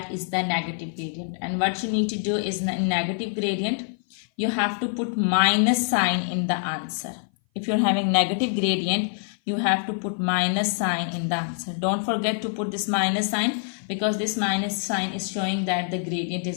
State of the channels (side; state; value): right; silent; 57 dB below the other